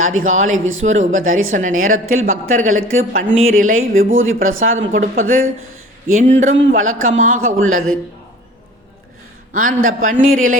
அதிகாலை விஸ்வரூப தரிசன நேரத்தில் பக்தர்களுக்கு பன்னீர் இலை விபூதி பிரசாதம் கொடுப்பது என்றும் வழக்கமாக உள்ளது. அந்த பன்னீர் இலை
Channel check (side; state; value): both; normal; correlation 0.45